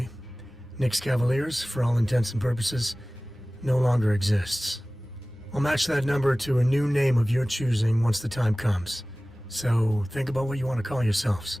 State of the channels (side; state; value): both; normal; correlation 0.98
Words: Nyx Cavaliers, for all intents and purposes, no longer exists. I'll match that number to a new name of your choosing once the time comes. So think about what you want to call yourselves.